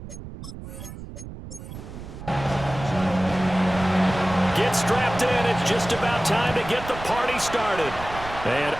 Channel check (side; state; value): right; noise; rumble, 12 dB below the sound